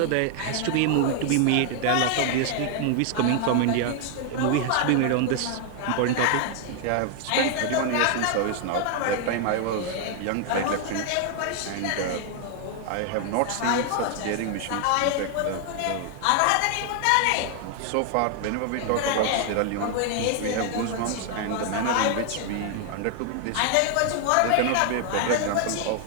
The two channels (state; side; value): different; both; correlation 0.00